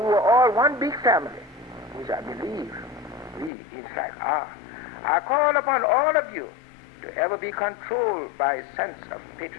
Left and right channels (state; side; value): drops out; right; at 3.5 s